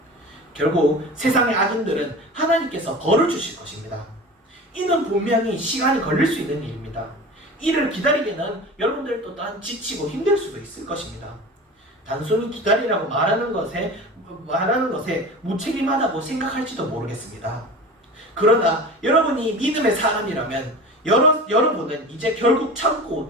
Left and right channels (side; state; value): both; normal; correlation 0.34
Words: 결국 세상의 악인들은 하나님께서 벌을 주실 것입니다. 이는 분명히 시간이 걸릴 수 있는 일입니다. 이를 기다리기는 여러분들 또한 지치고 힘들 수도 있을 것입니다. 단순히 기다리라고 말하는 것에 무책임하다고 생각할지도 모르겠습니다. 그러나 여러분이 믿음의 사람이라면 여러분은 이제 결국